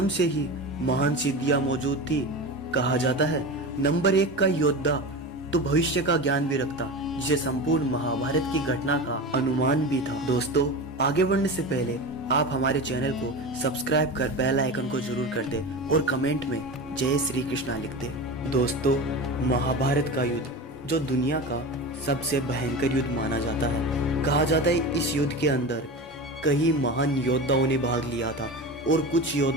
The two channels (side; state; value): both; normal; correlation 0.27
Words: से ही महान सिद्धियां मौजूद थी। कहा जाता है नंबर 1 का योद्धा तो भविष्य का ज्ञान भी रखता, जिसे संपूर्ण महाभारत की घटना का अनुमान भी था। दोस्तों, आगे बढ़ने से पहले आप हमारे चैनल को सब्सक्राइब कर बेल आइकन को जरूर कर दे और कमेंट में जय श्री कृष्णा लिख दे। दोस्तों, महाभारत का युद्ध जो दुनिया का सबसे भयंकर युद्ध माना जाता है। कहा जाता है इस युद्ध के अंदर कई महान योद्धाओं ने भाग लिया था और कुछ